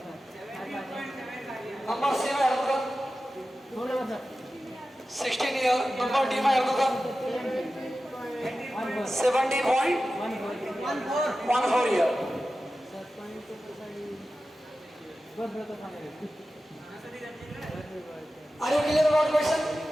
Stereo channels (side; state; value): both; normal; correlation 0.94